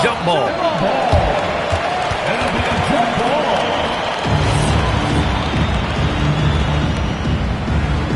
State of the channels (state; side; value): identical; both; correlation 1.00